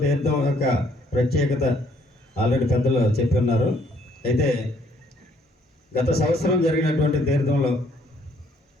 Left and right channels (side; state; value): both; normal; correlation 0.65